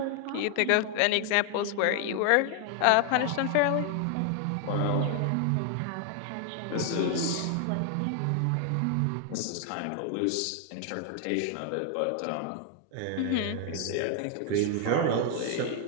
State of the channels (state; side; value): different; both; correlation 0.00